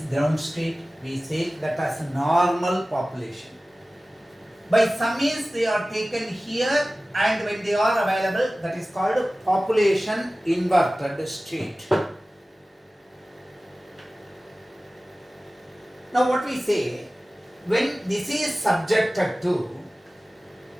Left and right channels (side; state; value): both; normal; correlation 0.97